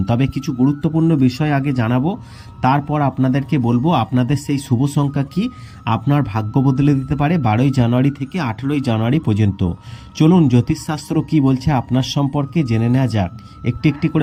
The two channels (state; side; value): identical; both; correlation 1.00